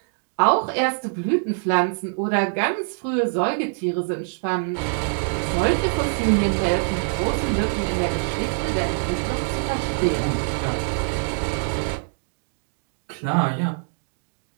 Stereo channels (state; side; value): silent; left; digital silence